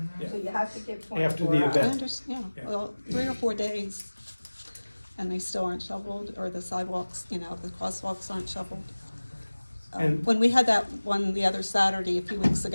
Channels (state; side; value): inverted; both; correlation -1.00